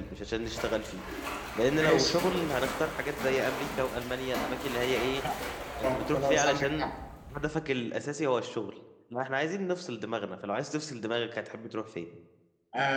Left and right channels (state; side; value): identical; both; correlation 1.00